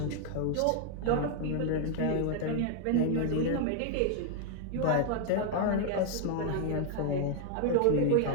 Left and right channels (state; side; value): different; both; correlation 0.00